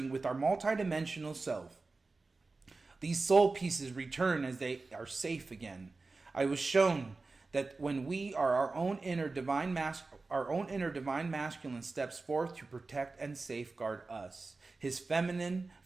with our multidimensional self. These soul pieces return as they are safe again. I was shown that when we are our own inner divine masculine steps forth to protect and safeguard us, his feminine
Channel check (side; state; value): left; quieter; 3.7 dB